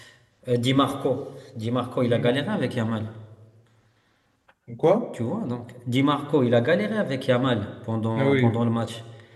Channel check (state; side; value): identical; both; correlation 1.00